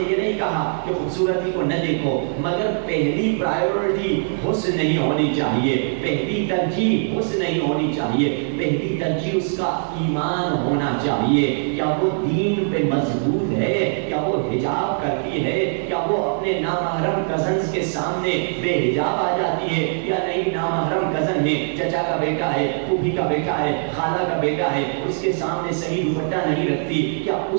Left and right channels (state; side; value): silent; left; 60 dB below the other